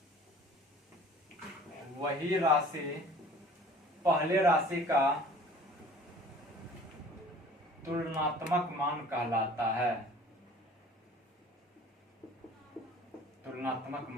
वही राशि पहले राशि का तुलनात्मक मान कहलाता है। तुलनात्मक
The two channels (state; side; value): normal; both; correlation 0.48